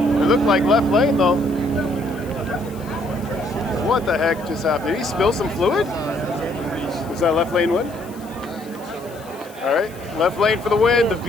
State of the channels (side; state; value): left; noise; hiss, 23 dB below the sound